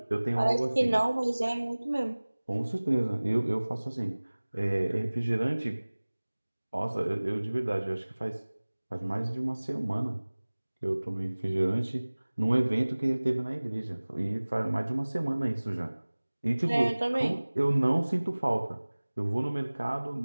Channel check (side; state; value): both; inverted; correlation -1.00